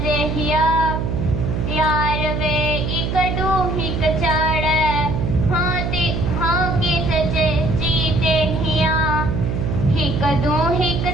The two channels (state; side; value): noise; right; hum, 1 dB below the sound